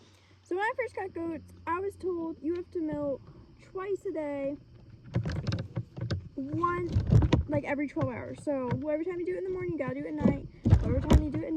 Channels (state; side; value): identical; both; correlation 1.00